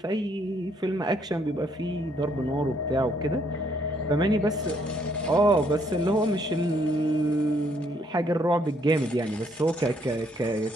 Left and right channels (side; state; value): both; normal; correlation 0.69